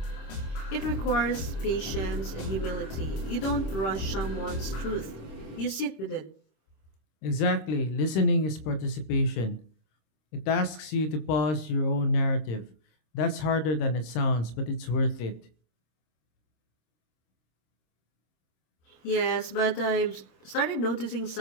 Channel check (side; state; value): right; late; 26 ms